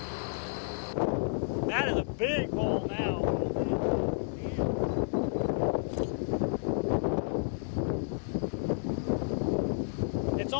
That is a big bowl now. It's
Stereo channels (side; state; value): right; silent; digital silence